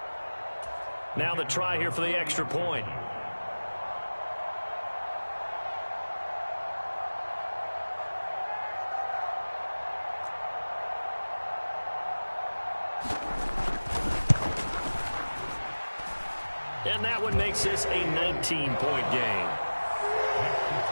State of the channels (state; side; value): inverted; both; correlation -1.00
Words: Now the try here for the extra point. And that one makes this a 19-point game.